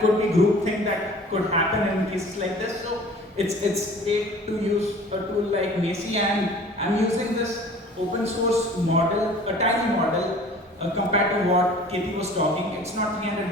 could be groupthink that could happen in cases like this. So it's great to use a tool like Macy, and I'm using this open source model, a tiny model compared to what Katie was talking. It's not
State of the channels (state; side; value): normal; both; correlation 0.46